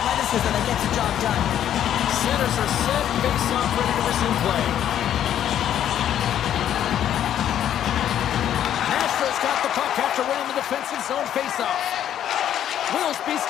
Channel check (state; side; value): quieter; right; 10.6 dB